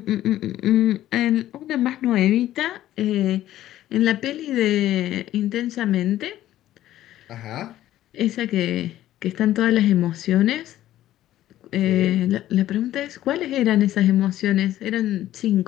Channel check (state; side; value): quieter; right; 13.5 dB